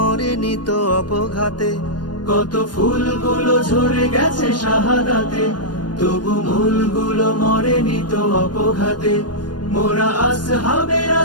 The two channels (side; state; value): right; late; 0.70 ms